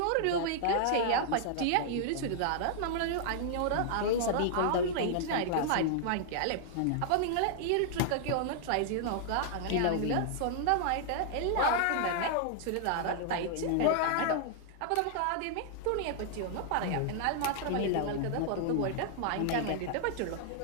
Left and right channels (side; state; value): both; different; correlation -0.01